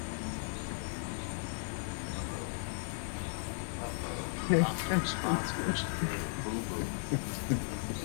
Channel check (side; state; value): right; silent; digital silence